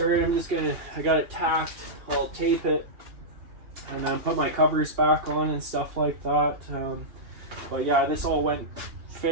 I got it tacked, I'll tape it, and then put my covers back on and stuff like that. But yeah, this all went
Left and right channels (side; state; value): left; late; 2.8 ms